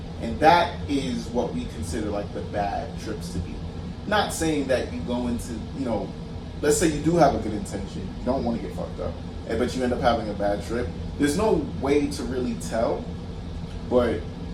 And that is what we consider like the bad trips to be. Not saying that you go into, let's say you do have a good intention, you don't want to get fucked up, but you end up having a bad trip. There's no way to really tell, but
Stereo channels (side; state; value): both; identical; correlation 1.00